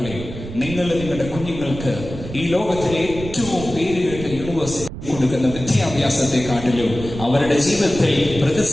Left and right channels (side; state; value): right; noise; rumble, 10 dB below the sound